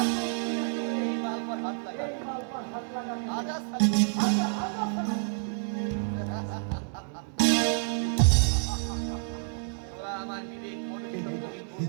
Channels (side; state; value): left; silent; digital silence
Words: दूध पिया तो এই মাল पर हाथ लगा এই माल पर हाथ लगा आजा साला आजा आजा साला তোরা আমার বিবেক মনে